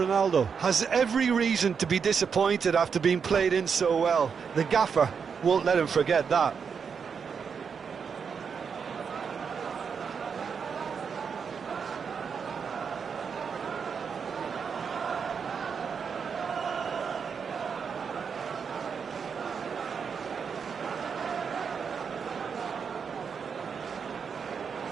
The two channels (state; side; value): quieter; left; 6.3 dB